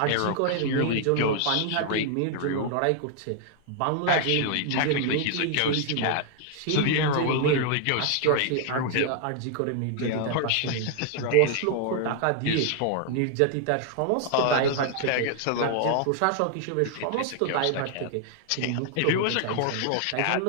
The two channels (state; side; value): different; both; correlation 0.00